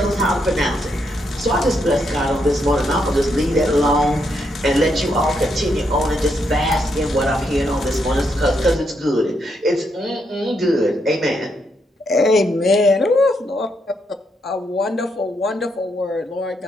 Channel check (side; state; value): both; normal; correlation 0.78